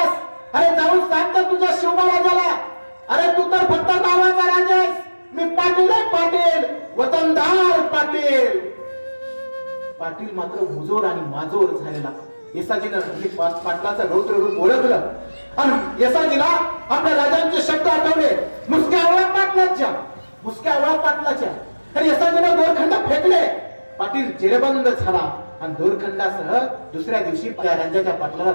अरे जाऊन सांग तर तुझ्या शिवबा राजाला. अरे तू तर फक्त नावाचा राजा आहेस, मी पाटील आहे पाटील, वतनदार पाटील. पाटील मात्र मुजोर आणि माजोर झालेला. येसाजीनं पाटलाचं रौद्र रूप ओळखलं आणि येसाजीला आपल्या राजांचे शब्द आठवले, मुसक्या आवळा पाटलाच्या, मुसक्या आवळा पाटलाच्या. आणि येसाजीनं दोरखंड फेकले. पाटील जेरबंद झाला आणि दोरखंडासह दुसऱ्या दिवशी त्या राजाच्या पाटलाला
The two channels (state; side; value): inverted; both; correlation -1.00